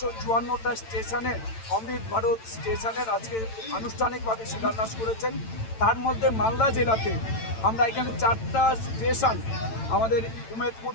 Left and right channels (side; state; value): right; late; 8.9 ms